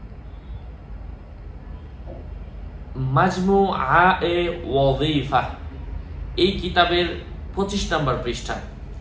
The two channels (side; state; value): both; identical; correlation 1.00